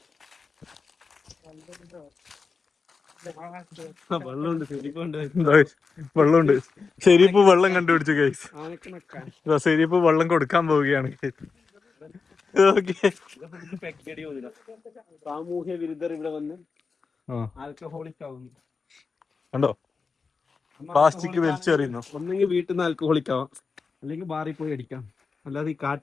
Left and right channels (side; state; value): right; quieter; 4.8 dB